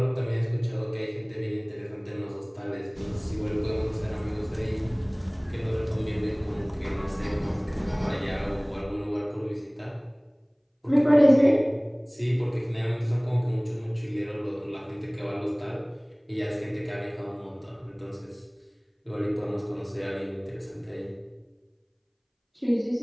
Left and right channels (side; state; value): both; identical; correlation 1.00